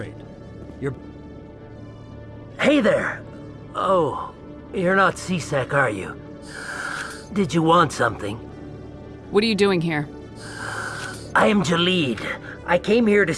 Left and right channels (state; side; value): identical; both; correlation 1.00